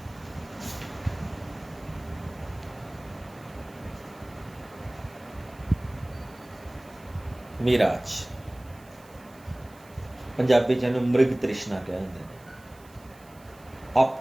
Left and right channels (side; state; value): right; noise; hiss, 26 dB below the sound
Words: मिराज पंजाबी च इहनूं मृग तृष्णा कहते हैं।